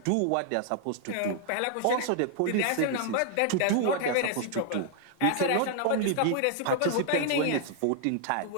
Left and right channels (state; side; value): different; both; correlation 0.00